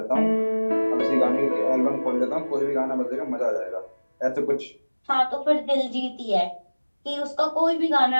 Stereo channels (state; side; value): inverted; both; correlation -1.00